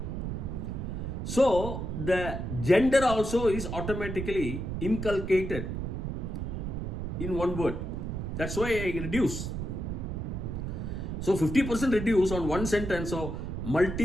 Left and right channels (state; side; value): noise; right; rumble, 4 dB below the sound